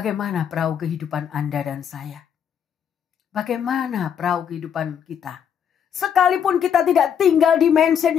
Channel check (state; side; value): quieter; right; 8.3 dB